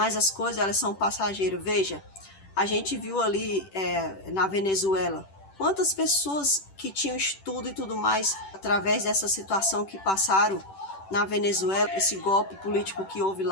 as coisas elas são passageiras. Veja, a gente viu ali na Venezuela, quantas pessoas que tinham estudo e tudo mais, através dessa situação que passaram na Venezuela, esse golpe político que houve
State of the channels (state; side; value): late; right; 10 ms